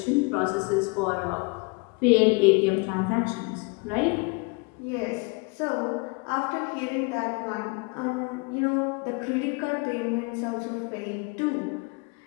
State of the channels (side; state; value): right; quieter; 30.3 dB